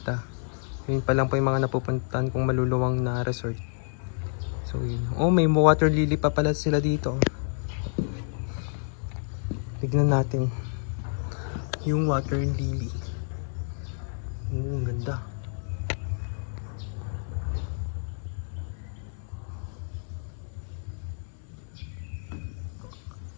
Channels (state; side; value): silent; right; 59 dB below the other